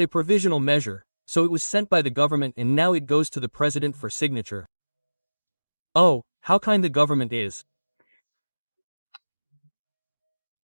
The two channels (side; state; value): both; inverted; correlation -1.00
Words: provisional measure, so it was sent by the government and now it goes to the president for signature. Oh, how kind the government is.